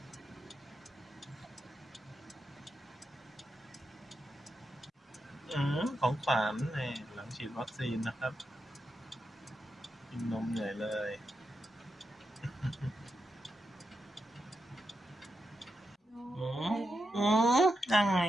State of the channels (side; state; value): both; normal; correlation 0.86